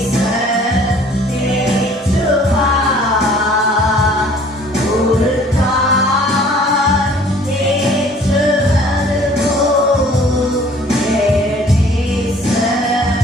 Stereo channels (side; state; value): both; normal; correlation 0.54